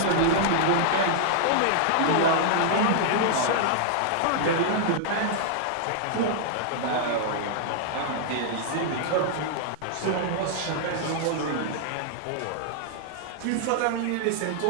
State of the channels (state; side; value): different; both; correlation -0.01